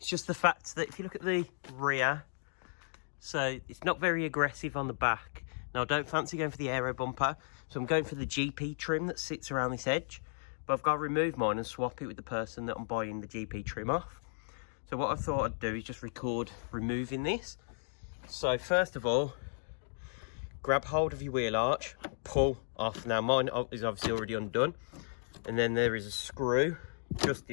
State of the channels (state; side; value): silent; right; digital silence